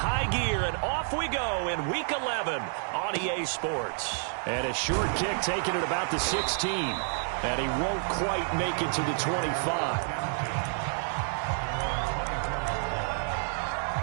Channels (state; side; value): silent; left; 58 dB below the other